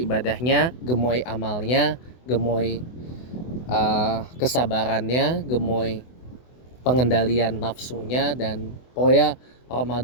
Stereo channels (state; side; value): late; right; 24 ms